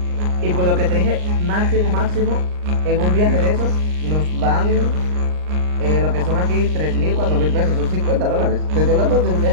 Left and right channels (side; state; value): left; late; 39 ms